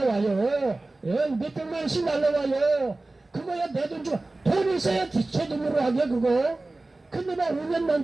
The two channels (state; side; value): quieter; left; 3.0 dB